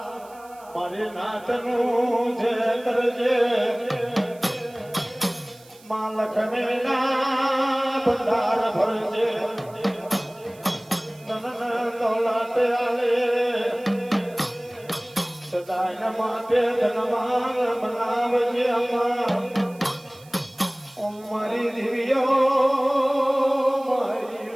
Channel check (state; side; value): noise; right; hiss, 25 dB below the sound